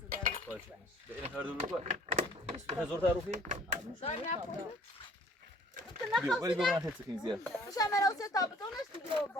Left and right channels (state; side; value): normal; both; correlation 0.54